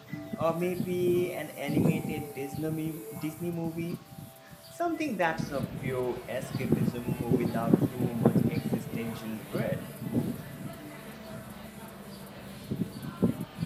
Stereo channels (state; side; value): identical; both; correlation 1.00